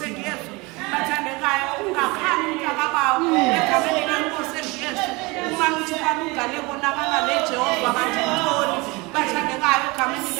Yesu bathandekayo ungakhani umntakabawo egameni lenkosi Yesu uma uthi balungale konakala leJehova kanti ntoni bathandekayo egameni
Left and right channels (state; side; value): quieter; left; 25.0 dB